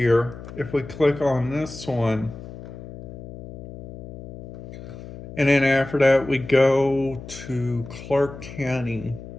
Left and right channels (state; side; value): noise; left; hum, 13 dB below the sound